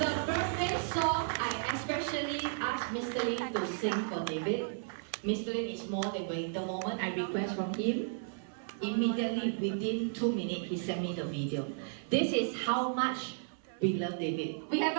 birthday song I especially Mr. Lin to sing for David. Mr. Lin is more than waiting. The moment I request from him, immediately within 2 minutes, he sent me the video. This is how much we love David. We have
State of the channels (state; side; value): silent; left; 55 dB below the other